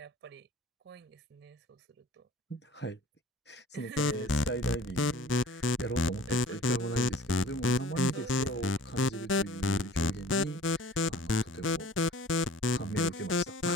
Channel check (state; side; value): normal; both; correlation 0.46